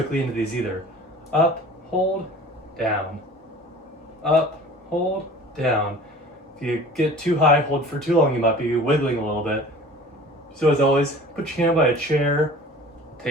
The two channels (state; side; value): normal; both; correlation 0.43